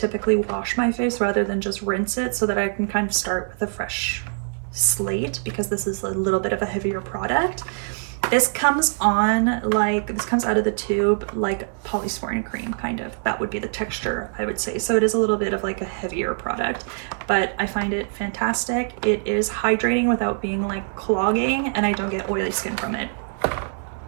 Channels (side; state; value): left; silent; digital silence